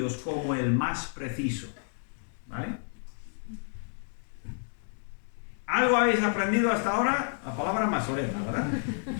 como el más preciso, ¿vale? ¿Algo habéis aprendido hasta ahora? La palabra masoreta, ¿verdad?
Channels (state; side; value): silent; right; digital silence